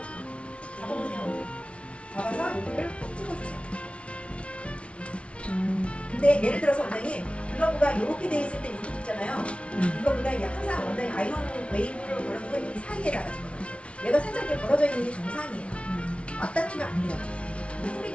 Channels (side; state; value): right; late; 0.061 ms